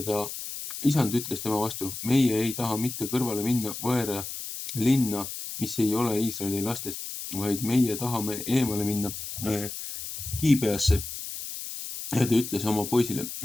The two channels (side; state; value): left; noise; hiss, 8 dB below the sound